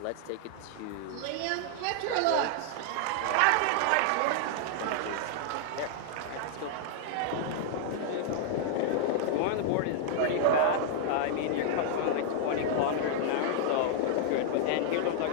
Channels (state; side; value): different; both; correlation -0.01